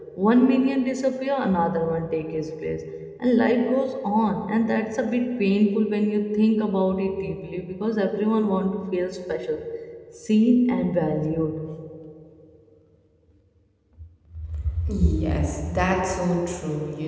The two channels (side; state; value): both; identical; correlation 1.00